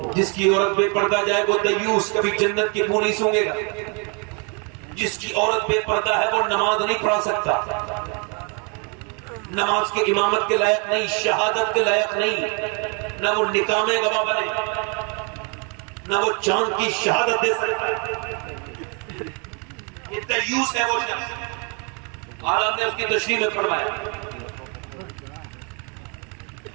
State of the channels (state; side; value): quieter; left; 35.2 dB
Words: جس کی عورت بے پردہ جائے وہ دیوس، کبھی جنت کی بو نہیں سونگے گا۔ جس کی عورت بے پردہ ہے وہ نماز نہیں پڑھا سکتا، نماز کے امامت کے لائق نہیں، شہادت کے لائق نہیں، نہ وہ نکاح میں گواہ بنے، نہ وہ چاند کی شہادت دے سکتا۔ یہ دیوس ہے وہ شخص، عالم نے اس کی تشریح میں فرمایا۔